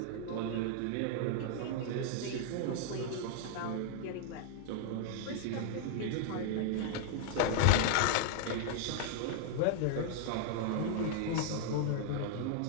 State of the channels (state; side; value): different; both; correlation 0.00